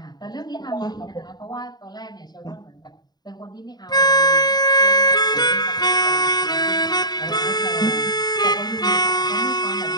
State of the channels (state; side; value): late; right; 0.20 ms